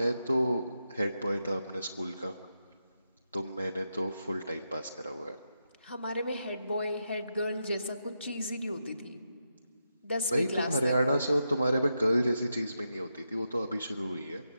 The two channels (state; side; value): inverted; both; correlation -0.85